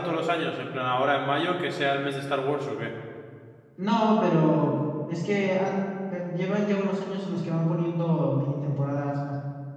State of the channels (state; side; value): identical; both; correlation 1.00